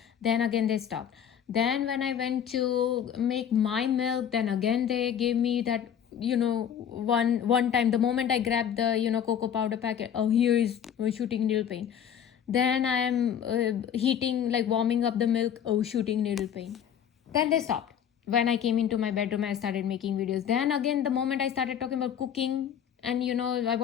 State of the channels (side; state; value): right; quieter; 9.0 dB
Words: Then again they stopped. Then when I went to make my milk, then again they gave me that, one time. The moment I grabbed the cocoa powder packet, here is shooting needle pain. Then I am heating, warming up the milk, shooting needle pain. Then they stopped. When I came into my bedroom, I started making videos. Then again, the moment I started talking about cooking, and I